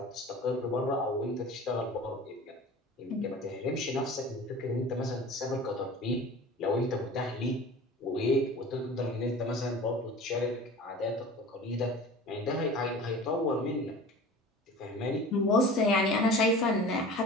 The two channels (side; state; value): both; normal; correlation 0.39